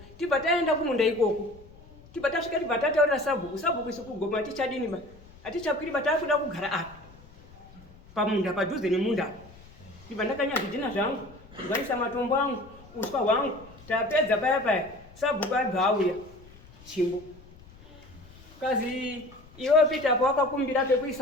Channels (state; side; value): noise; left; rumble, 22 dB below the sound